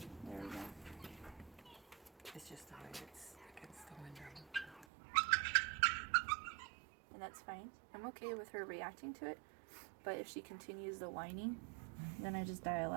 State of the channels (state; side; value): drops out; left; at 4.9 s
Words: we go. It's just the way it's against the window. And that's fine. I'm okay with her reacting to it, but if she continues the whining, then I just dial